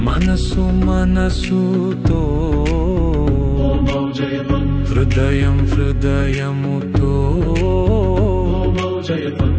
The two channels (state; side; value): identical; both; correlation 1.00